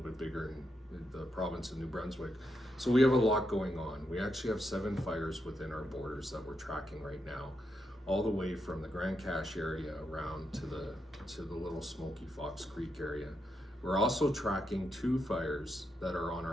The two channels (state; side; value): normal; both; correlation 0.83